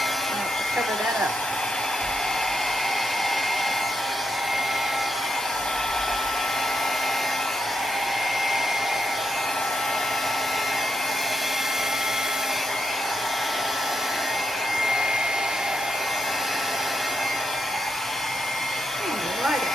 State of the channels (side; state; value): both; normal; correlation 0.82